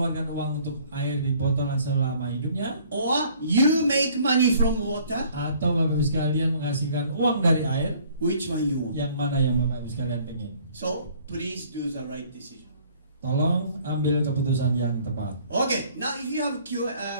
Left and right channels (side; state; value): both; inverted; correlation -0.57